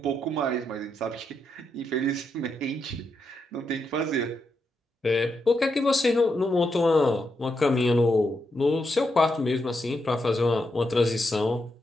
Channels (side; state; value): both; normal; correlation 0.83